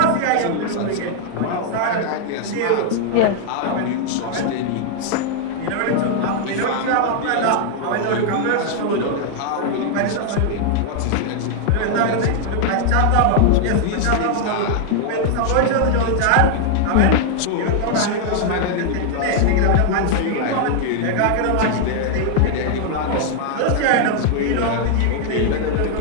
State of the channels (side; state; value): both; different; correlation 0.00